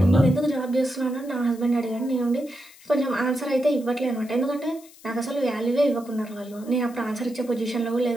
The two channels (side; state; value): left; noise; hiss, 23 dB below the sound